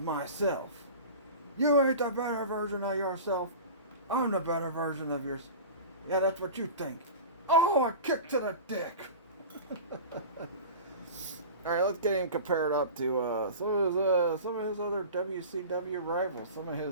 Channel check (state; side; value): inverted; both; correlation -0.34